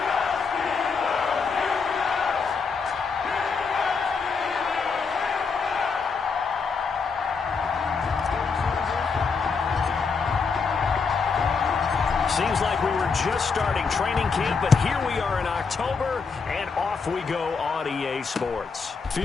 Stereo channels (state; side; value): quieter; right; 5.1 dB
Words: Seems like we were just starting training camp, but here we are in October, and off we go on EA Sports.